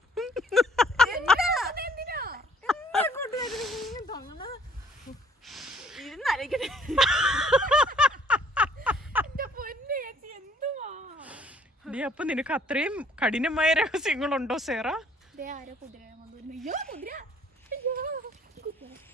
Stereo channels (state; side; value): normal; both; correlation 0.60